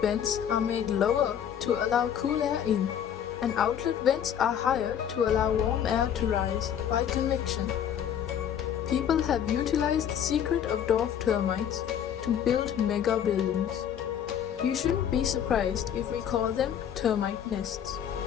are made lower to allow cool air in, and outlet vents are higher to allow warm air to rise by convection. People have utilized the secret of dwarf termites to build mega buildings. You shouldn't be surprised if we call them termite nests.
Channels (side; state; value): right; quieter; 9.2 dB